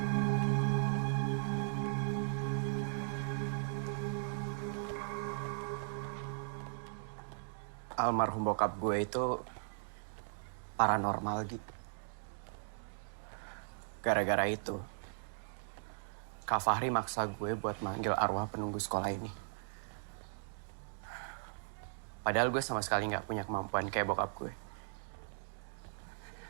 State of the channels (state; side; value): silent; left; digital silence